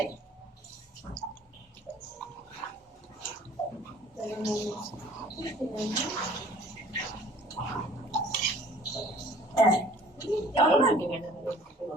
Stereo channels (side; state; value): both; normal; correlation 0.51